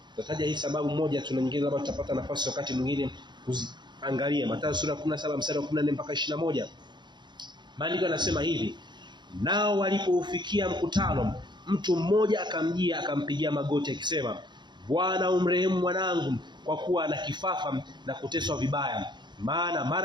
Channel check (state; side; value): late; left; 0.22 ms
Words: Tutataja hii sababu moja, tuna nyingine labda tutapata nafasi wakati mwingine kuziangalia. Mathayo sura ya 17 mstari wa 14 mpaka 21. Maandiko yanasema hivi: nao walipoufikia mkutano, mtu mmoja akamjia akampigia magoti akisema, Bwana umrehemu mwanangu, kwa kuwa ana kifafa na kuteswa vibaya, maana